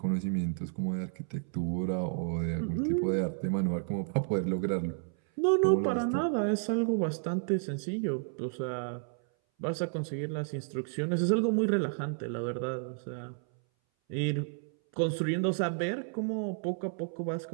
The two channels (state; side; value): silent; left; 57 dB below the other